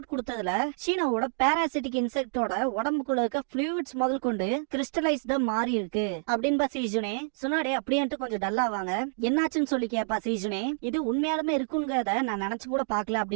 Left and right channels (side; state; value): left; silent; digital silence